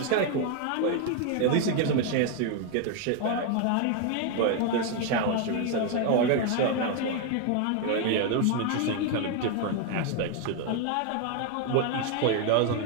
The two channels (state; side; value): different; both; correlation 0.01